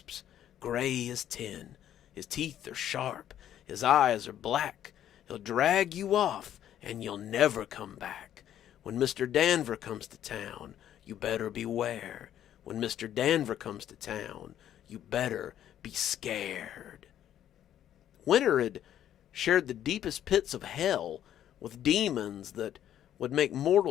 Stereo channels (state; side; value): quieter; right; 11.0 dB